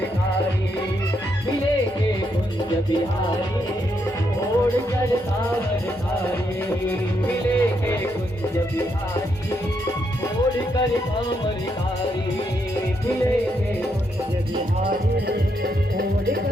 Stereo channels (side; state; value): both; normal; correlation 0.78